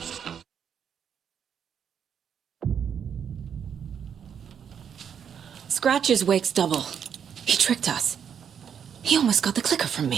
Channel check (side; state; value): left; quieter; 7.9 dB